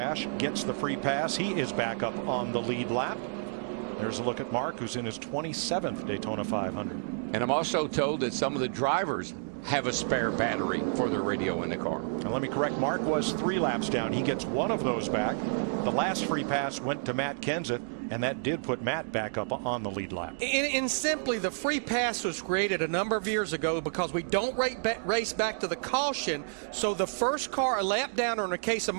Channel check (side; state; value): left; silent; digital silence